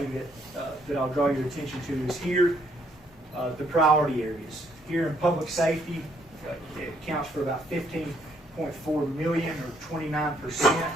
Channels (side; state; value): both; normal; correlation 0.69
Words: that I'll draw your attention to is here, the priority areas. Here in public safety, it accounts for about $15.4 million, or 29%